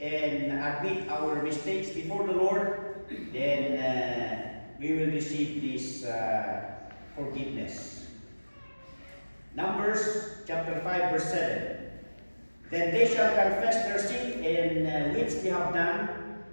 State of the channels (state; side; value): inverted; both; correlation -1.00